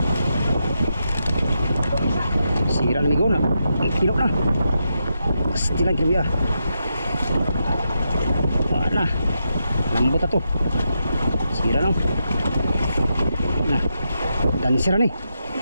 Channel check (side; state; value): both; inverted; correlation -0.84